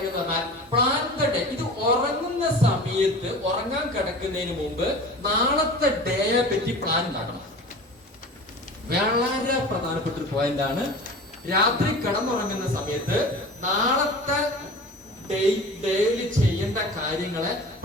എന്ന് പറഞ്ഞാൽ പ്ലാൻ ദ ഡേ. ഇത് ഉറങ്ങുന്ന സമയത്ത്, ഉറങ്ങാൻ കിടക്കുന്നതിന് മുമ്പ് നാളത്തെ ഡേയെ പറ്റി പ്ലാൻ ഉണ്ടാക്കണം. വളരെ പ്രധാനപ്പെട്ട ഒരു പോയിന്റ് ആണ്. രാത്രി കിടന്നുറങ്ങുന്ന സമയത്ത് നാളത്തെ ഡെയിലി ചെയ്യേണ്ട കാര്യങ്ങളെ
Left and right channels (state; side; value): normal; both; correlation 0.37